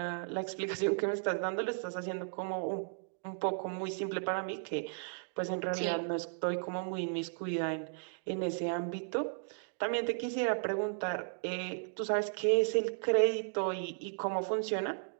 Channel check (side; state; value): left; silent; digital silence